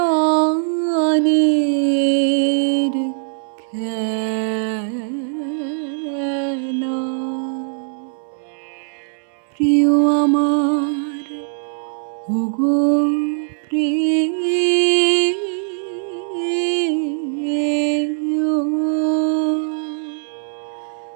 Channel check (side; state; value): left; silent; 66 dB below the other